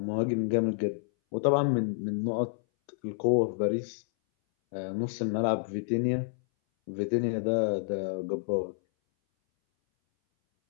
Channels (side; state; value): right; silent; 58 dB below the other